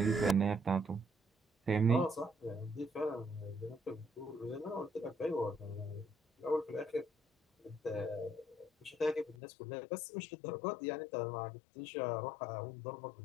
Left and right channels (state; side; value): drops out; right; at 9.3 s